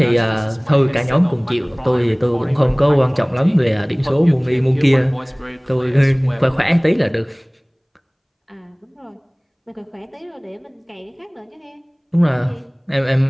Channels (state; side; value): identical; both; correlation 1.00